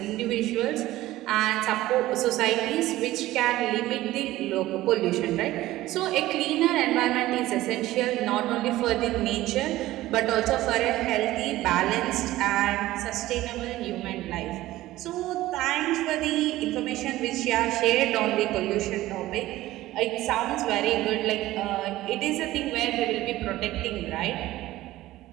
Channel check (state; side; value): quieter; left; 16.2 dB